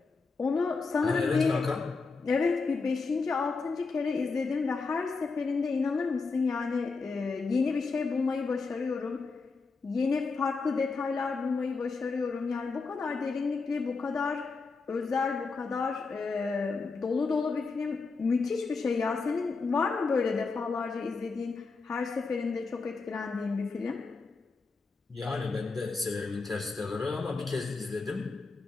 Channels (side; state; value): right; quieter; 4.3 dB